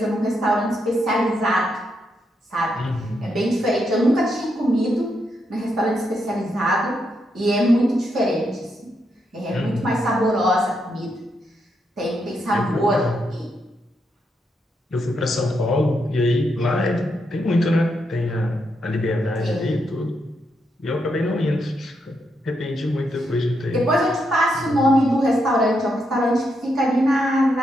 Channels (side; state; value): both; normal; correlation 0.80